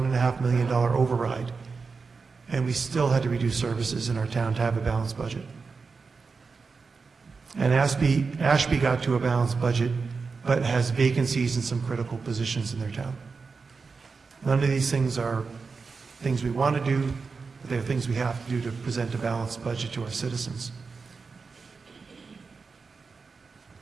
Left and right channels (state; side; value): quieter; left; 4.7 dB